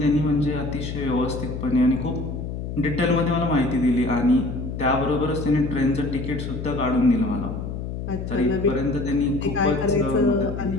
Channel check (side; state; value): left; noise; hum, 6 dB below the sound